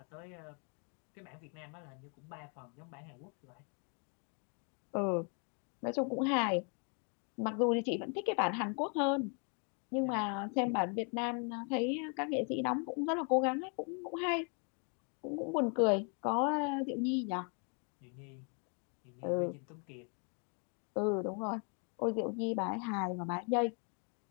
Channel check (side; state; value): right; quieter; 38.9 dB